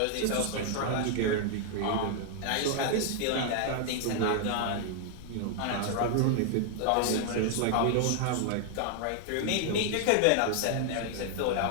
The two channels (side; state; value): both; different; correlation 0.00